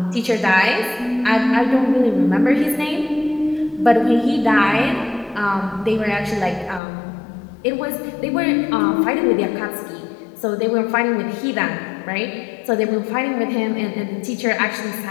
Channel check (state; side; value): drops out; right; at 6.8 s